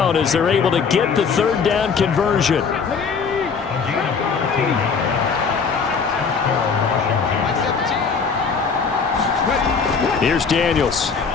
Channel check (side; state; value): right; quieter; 5.6 dB